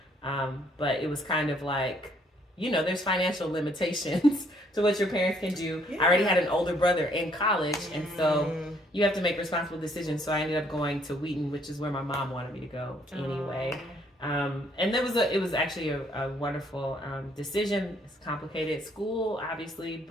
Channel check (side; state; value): both; normal; correlation 0.66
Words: but it was kind of like, you know, there's financial limitations to what your parents can do. Yeah. I already had an older brother in college, and so you have to make responsible decisions. So I ended up going to Wheaton, which is where my mom wanted me to go anyway. And it was actually a wonderful decision. It's a complicated school, obviously,